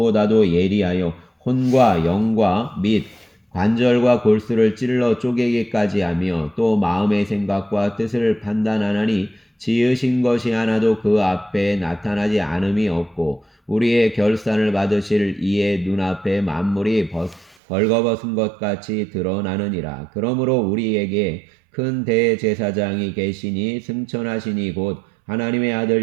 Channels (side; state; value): left; drops out; at 17.6 s